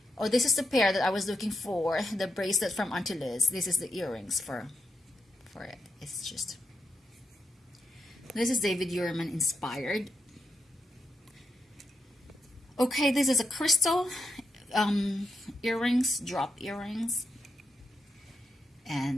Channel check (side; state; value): both; normal; correlation 0.84